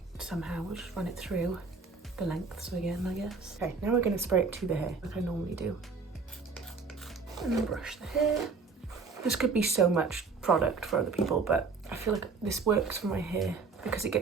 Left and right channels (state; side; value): quieter; left; 4.6 dB